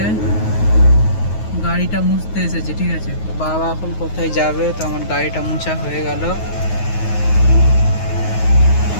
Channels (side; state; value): right; late; 9.4 ms